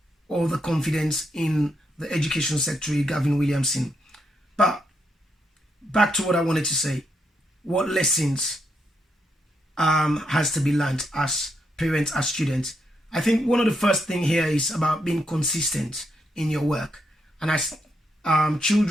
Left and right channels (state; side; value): normal; both; correlation 0.80